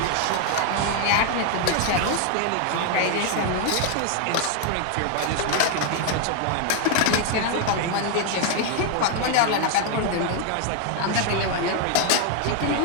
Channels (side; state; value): both; different; correlation 0.01